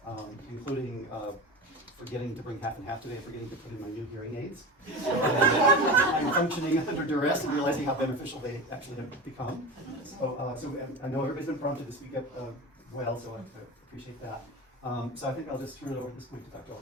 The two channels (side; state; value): both; normal; correlation 0.28